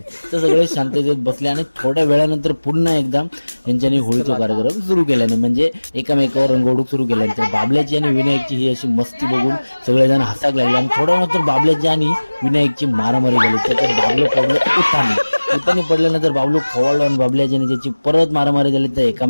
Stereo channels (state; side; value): inverted; both; correlation -1.00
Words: तर सगळे शांततेत बसले आणि थोड्या वेळानंतर पुन्हा एकदा यांच्यानी होळीचा कार्यक्रम सुरू केल्याने म्हणजे एकामेकावर रंग उडवून सुरू केल्यानंतर बाबल्याची आणि विनायकची ही अशी मस्ती बघून सगळेजण हसाक लागले आणि थोड्या नंतर बाबल्याची आणि विनायकची मारामारी झाली। त्याच्यात बाबलो पडलो उतानी पडल्यानंतर बाबलो खवळलो आणि बाबल्याची ज्याची परत मारामारी झाली तर